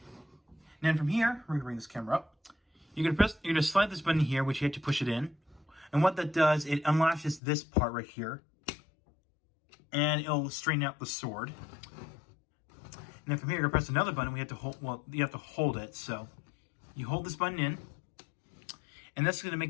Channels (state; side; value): drops out; right; at 7.4 s